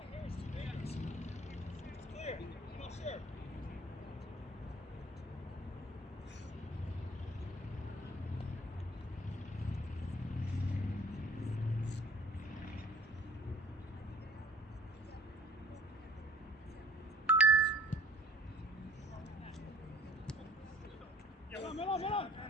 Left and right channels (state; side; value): normal; both; correlation 0.51